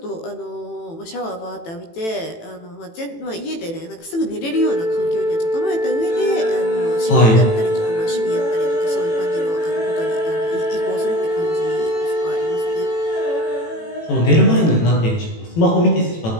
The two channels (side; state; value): right; late; 18 ms